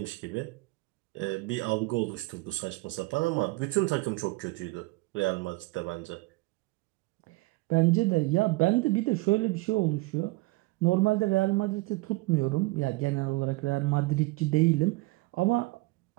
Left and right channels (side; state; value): left; quieter; 22.5 dB